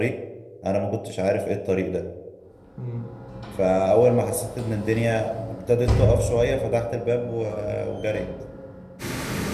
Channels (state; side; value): identical; both; correlation 1.00